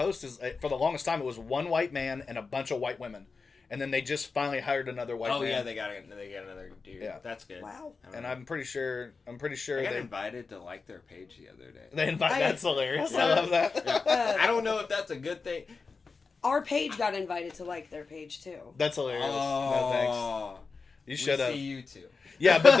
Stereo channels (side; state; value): right; quieter; 4.5 dB